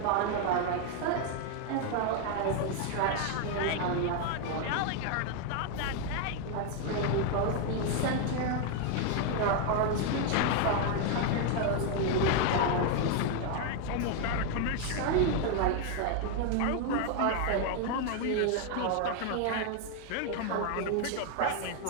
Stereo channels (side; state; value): both; different; correlation 0.01